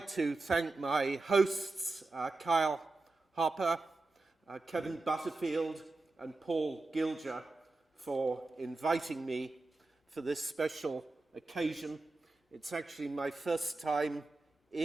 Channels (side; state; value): left; quieter; 3.3 dB